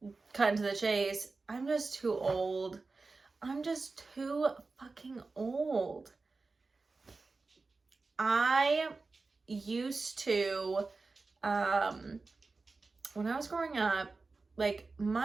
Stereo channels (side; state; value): left; quieter; 3.9 dB